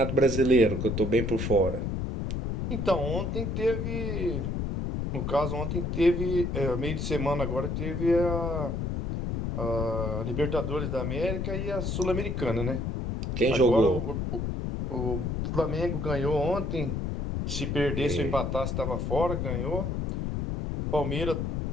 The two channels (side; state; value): left; noise; rumble, 2 dB below the sound